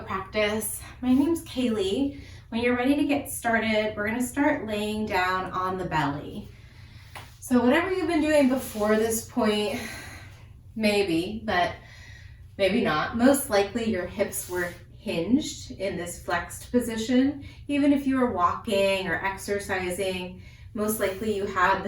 My name's Kaylee. When you're ready to get started, we're going to start laying down on the belly. So whatever you've been doing before this point, maybe, but maybe not. Most likely your hips were hinged in this flexed position. Even if you were walking or exercising, most likely you had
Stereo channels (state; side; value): identical; both; correlation 1.00